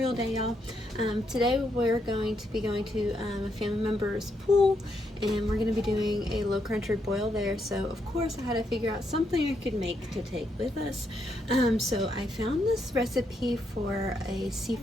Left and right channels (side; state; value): both; normal; correlation 0.78